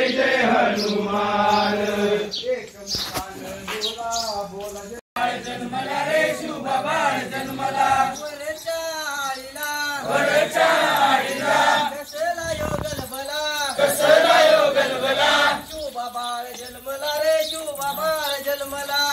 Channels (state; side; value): identical; both; correlation 1.00